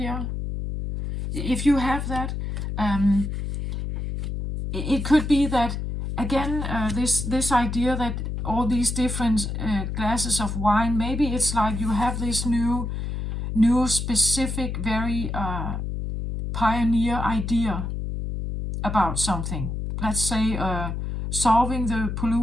if you have that, it could be that, again, this idea that all these different glasses of wine, maybe it's like you have this new specific, very pioneer idea about something. Let's say solving the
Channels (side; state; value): left; noise; hum, 4 dB below the sound